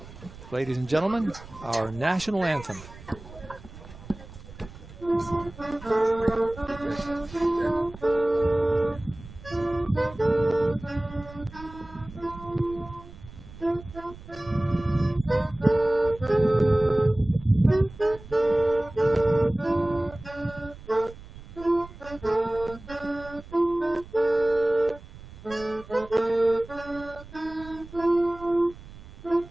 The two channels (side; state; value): right; noise; rumble, 17 dB below the sound